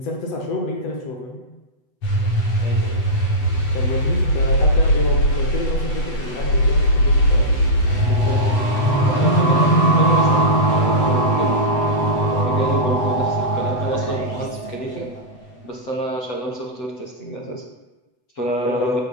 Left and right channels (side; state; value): right; late; 8.0 ms